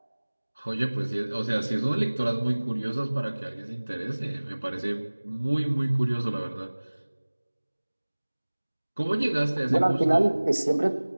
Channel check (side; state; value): both; inverted; correlation -1.00